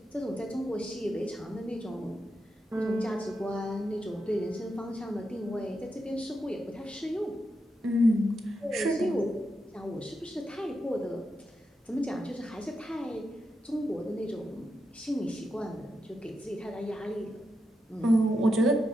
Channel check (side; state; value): both; normal; correlation 0.86